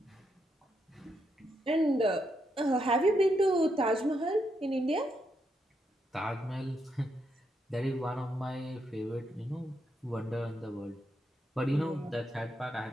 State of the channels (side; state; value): both; normal; correlation 0.80